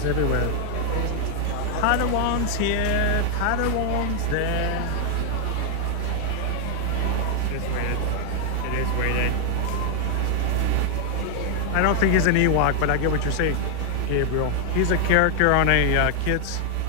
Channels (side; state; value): both; different; correlation 0.00